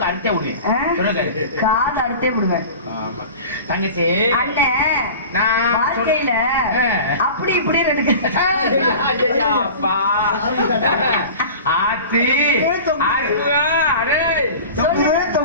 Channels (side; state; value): both; inverted; correlation -0.37